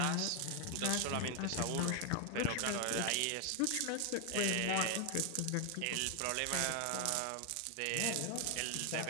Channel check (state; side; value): different; both; correlation 0.01